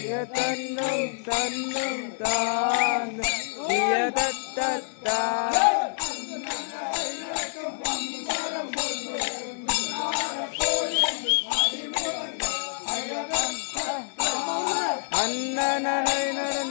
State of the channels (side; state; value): right; silent; digital silence